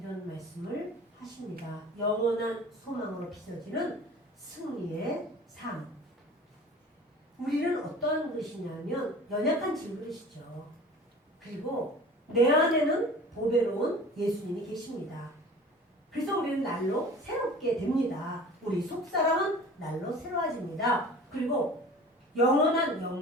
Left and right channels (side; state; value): both; normal; correlation 0.42